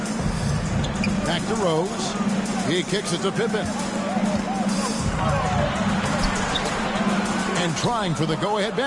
Back to Rose. He kicks it to Pippen. And trying for the go-ahead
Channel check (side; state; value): both; identical; correlation 1.00